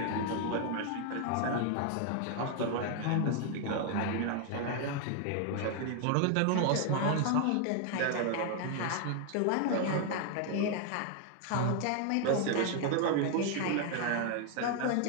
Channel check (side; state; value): both; different; correlation 0.00